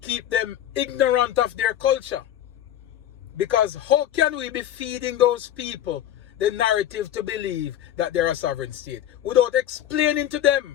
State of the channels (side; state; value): right; quieter; 11.3 dB